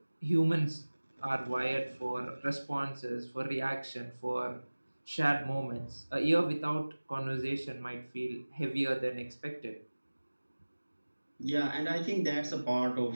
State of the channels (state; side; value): inverted; both; correlation -1.00